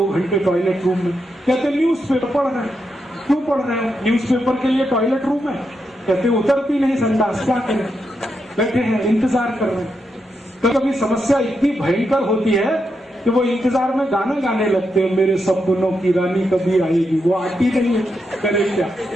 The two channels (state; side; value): normal; both; correlation 0.84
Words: घंटे टॉयलेट रूम में? कहते न्यूज़पेपर पढ़ रहे हैं। क्यों पढ़ रहे हो? न्यूज़पेपर के लिए टॉयलेट रूम है? कहते उतरती नहीं संडास, क्या करें, बैठे हैं इंतजार कर रहे हैं। कभी समस्या इतनी भयंकर होती है कि वो इंतजार में गाना गाने लगते हैं, मेरे सपनों की रानी कभी आएगी, वो आती नहीं है, करे क्या।